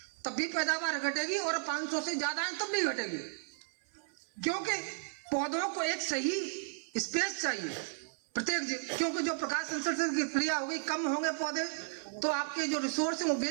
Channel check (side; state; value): left; silent; 55 dB below the other